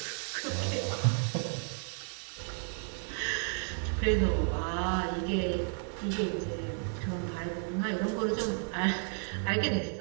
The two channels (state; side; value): silent; left; 56 dB below the other